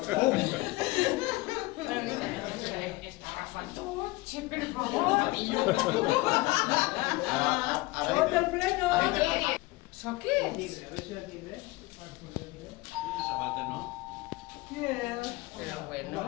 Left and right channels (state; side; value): quieter; right; 21.5 dB